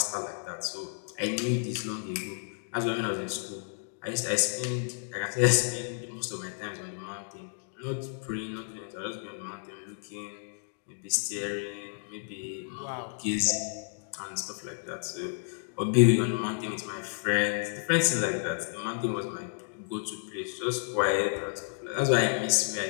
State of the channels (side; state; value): right; silent; digital silence